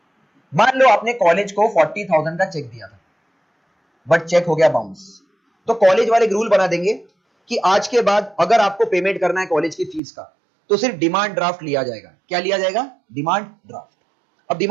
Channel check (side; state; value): left; drops out; at 10.0 s